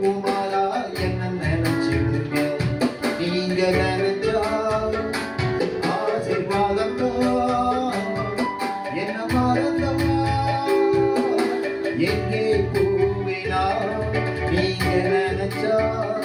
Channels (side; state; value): both; identical; correlation 1.00